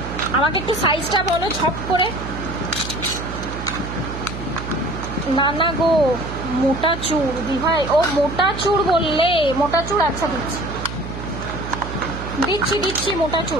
আমাকে একটু সাইজটা বলো ঝপ করে। না গো মোটা চূড় দিভাই, ও মোটা চূড় বললে, মোটা চূড় আচ্ছা দিচ্ছি মোটা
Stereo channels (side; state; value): right; noise; hum, 8 dB below the sound